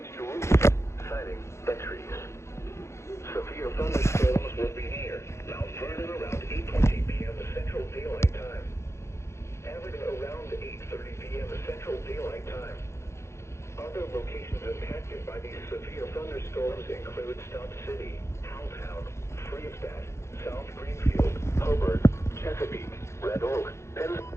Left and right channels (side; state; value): right; late; 0.13 ms